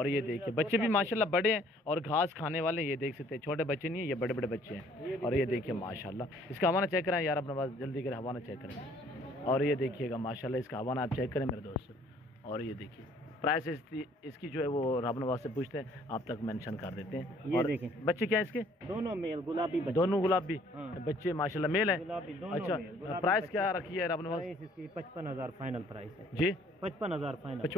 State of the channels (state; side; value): normal; both; correlation 0.59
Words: ये देखिए बच्चे भी माशाल्लाह बड़े हैं और घास खाने वाले, ये देख सकते हैं। छोटे बच्चे नहीं है, ये बड़े बड़े बच्चे हैं। और ये देखिए माशाल्लाह, इसका हवाना चेक करें यार अपने पास, जल्दी करें हवाना चेक करें। और ये देखिएगा माशाल्लाह, इसका हवाना आप चेक करें मेरे दोस्तों। और ये देखिए प्राइस इसकी जो है वो रब नवाज से पूछते हैं, आप तक मेंशन कर देते हैं। ये देखें बच्चे क्या है इसके? दोनों मेल गुलाबी बच्चे। दोनों गुलाबी हाँ। बच्चे माशाल्लाह मेल है। गुलाबी दोनों अच्छा, मेल, प्राइस क्या रखी है रब नवाज? प्राइस इसकी 55,000 फाइनल प्राइस है जी 55,000 फाइनल।